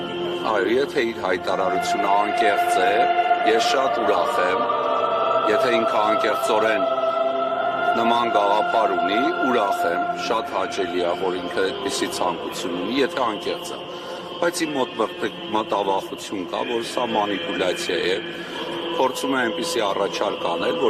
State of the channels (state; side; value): identical; both; correlation 1.00